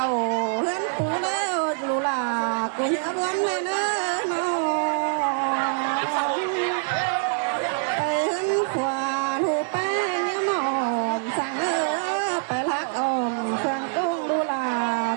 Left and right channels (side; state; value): left; silent; 62 dB below the other